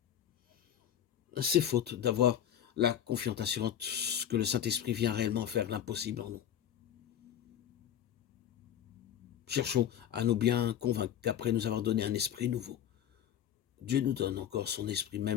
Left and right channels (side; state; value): right; quieter; 10.0 dB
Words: C'est faute d'avoir la confiance assurante que le Saint-Esprit vient réellement faire l'impossible en nous. Cherchons à nous bien convaincre qu'après nous avoir donné un esprit nouveau, Dieu nous donne encore son esprit